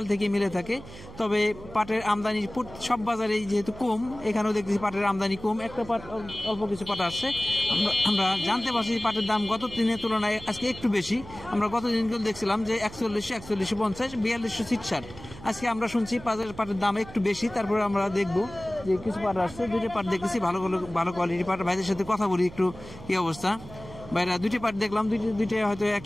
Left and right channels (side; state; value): right; noise; hum, 16 dB below the sound